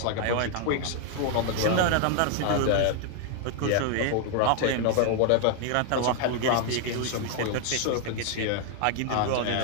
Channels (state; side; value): different; both; correlation 0.00